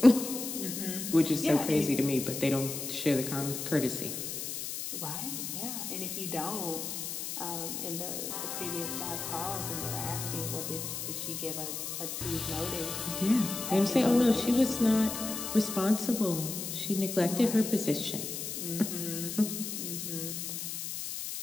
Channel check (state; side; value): noise; left; hiss, 5 dB below the sound